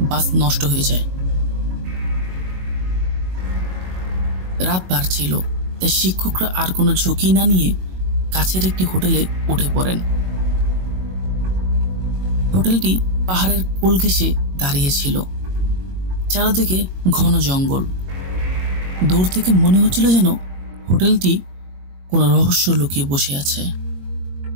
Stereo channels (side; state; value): left; late; 22 ms